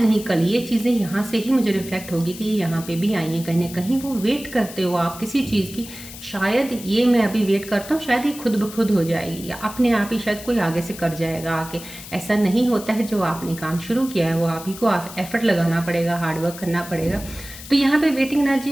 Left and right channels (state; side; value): noise; left; hiss, 14 dB below the sound